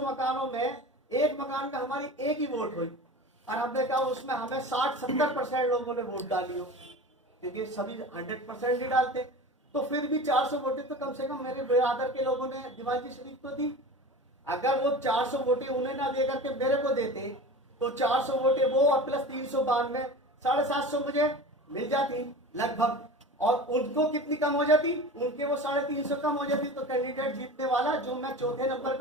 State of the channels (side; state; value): both; normal; correlation 0.34